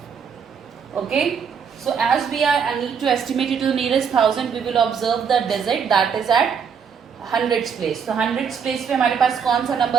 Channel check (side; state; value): left; quieter; 6.9 dB